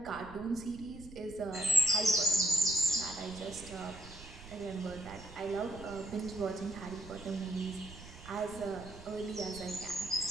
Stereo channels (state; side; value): noise; right; rumble, 16 dB below the sound